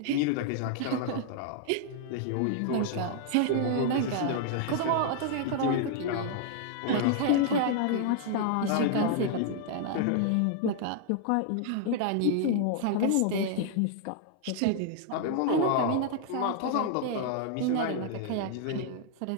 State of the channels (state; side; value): different; both; correlation -0.01